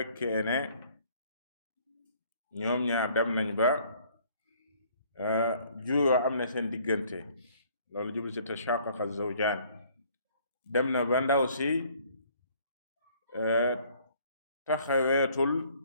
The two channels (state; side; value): inverted; both; correlation -0.59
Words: ne ñoom ñaar dem nañ ba juuyoo am na seen diggante, loolu jublu ci tashaqaqa zawjaan. dem na ba ndaw si taxaweetul